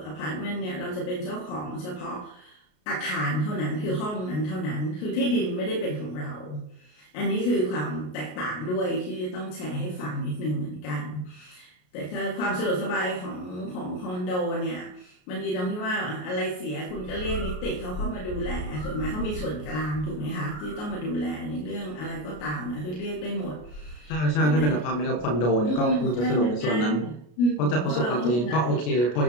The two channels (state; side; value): late; right; 33 ms